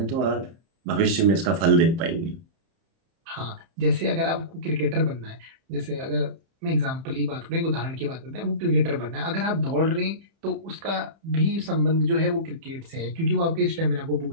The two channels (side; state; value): left; late; 30 ms